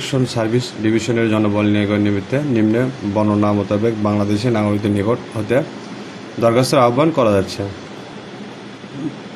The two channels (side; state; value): both; identical; correlation 1.00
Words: service ডিভিশনের জনবল নিয়োগের নিমিত্তে নিম্নে বর্ণনা মোতাবেক বাংলাদেশের নাগরিকদের নিকট হতে দরখাস্তের আহ্বান করা যাচ্ছে।